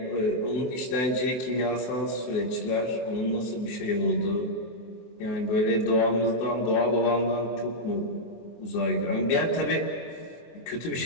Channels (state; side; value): late; right; 24 ms